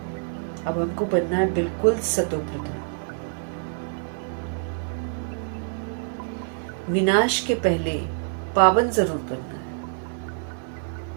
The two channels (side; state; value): left; silent; digital silence